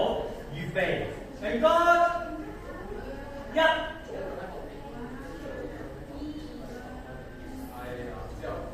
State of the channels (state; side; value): identical; both; correlation 1.00